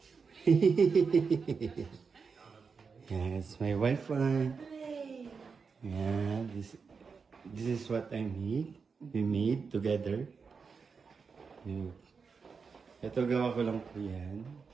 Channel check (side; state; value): left; quieter; 5.3 dB